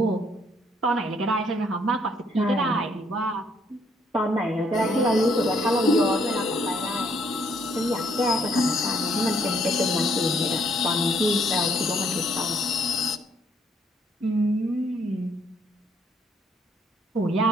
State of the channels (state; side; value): normal; both; correlation 0.67